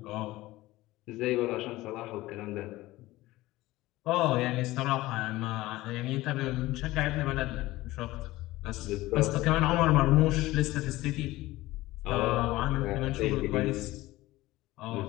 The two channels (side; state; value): right; quieter; 18.0 dB